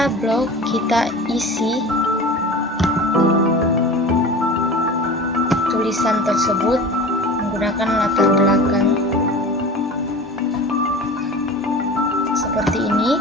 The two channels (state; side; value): normal; both; correlation 0.35